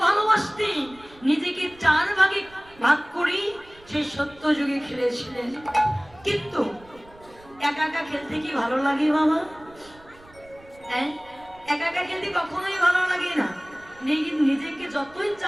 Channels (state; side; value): noise; right; rumble, 25 dB below the sound